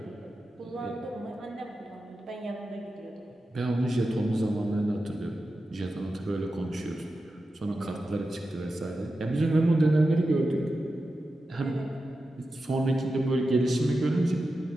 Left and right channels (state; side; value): normal; both; correlation 0.91